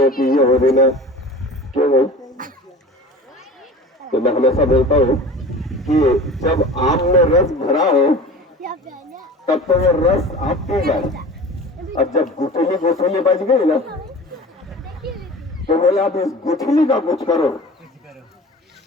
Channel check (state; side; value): normal; both; correlation 0.38